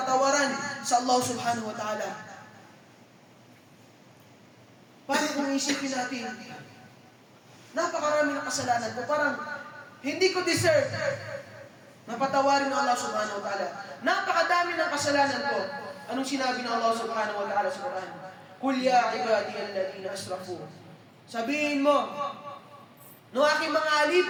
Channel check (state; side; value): identical; both; correlation 1.00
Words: sa Allah subhanahu wa ta'ala. Paano kung isipin natin, napakarami ng kasalanan ko, parang hindi ko deserve na patawarin ng Allah subhanahu wa ta'ala. Napakadami ng kasalanan ko. Anong sinabi ng Allah subhanahu wa ta'ala sa Quran? Qul ya ibadiyal ladina asrafu. Sabihin mo, no aking mga